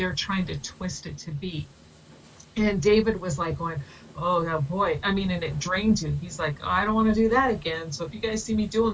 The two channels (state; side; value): identical; both; correlation 1.00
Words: trying to twist it to be. And David was like going, oh boy, and it drains you. He's like, oh, I don't want to do that again. So if you guys see me doing